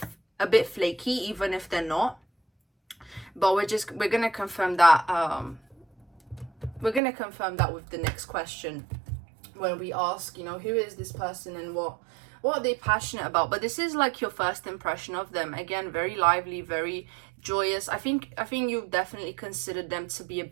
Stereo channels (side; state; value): left; drops out; at 7.0 s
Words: flaky, even if they're not. But we're gonna confirm that. We're gonna confirm that with the next question, when we ask, you know, who is this person and what are they passionate about. But this is like your first impression of them. Again, very lively, very joyous. I think you definitely considered them to be a